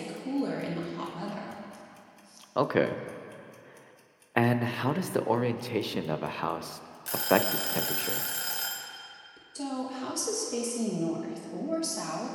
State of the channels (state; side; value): identical; both; correlation 1.00